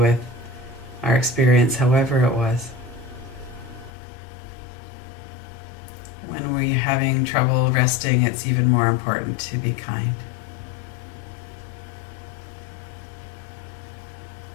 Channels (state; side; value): drops out; right; at 3.9 s